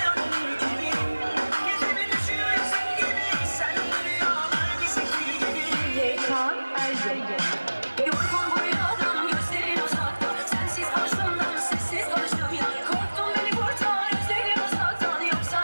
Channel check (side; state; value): both; inverted; correlation -1.00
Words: gibi. Gecemi düşüyor yüzün gibi. Sen rüyalar gizli gibi. Yekan Ergün. Yorgun bu rüyadan gözlerin uzakta. Sensiz karşımdan sessiz konuştum ya. Korktum beni kurtar özlerim uzaktan. Yoksa